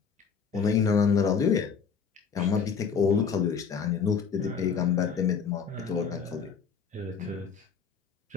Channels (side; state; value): right; quieter; 6.3 dB